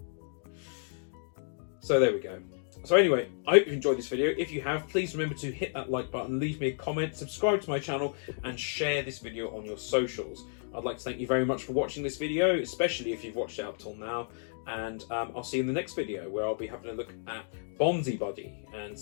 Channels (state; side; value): silent; right; digital silence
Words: So there we go. So anyway, I hope you've enjoyed this video. If you have, please remember to hit that like button, leave me a comment, subscribe to my channel, and share this video on your socials. I'd like to thank you very much for watching this video, especially if you've watched it up till now. And I'll see you in the next video, where I'll be having a look at Bonzi Buddy and